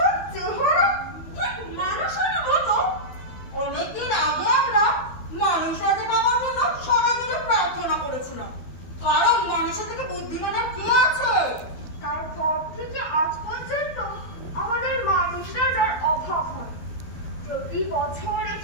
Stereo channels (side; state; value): right; late; 12 ms